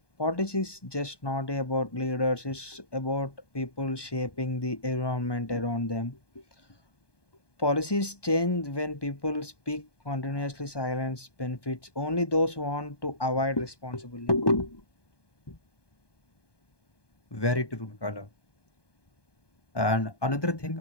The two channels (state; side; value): late; right; 1.2 ms